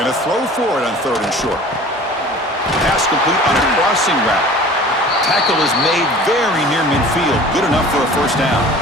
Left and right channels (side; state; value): both; normal; correlation 0.44